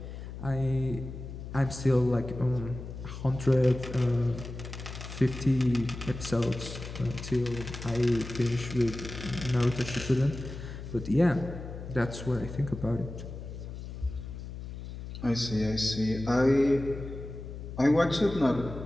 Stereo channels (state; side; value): noise; left; hum, 10 dB below the sound